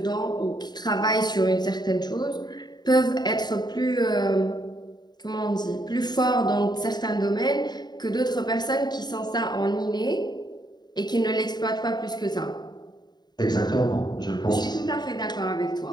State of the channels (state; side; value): late; right; 0.20 ms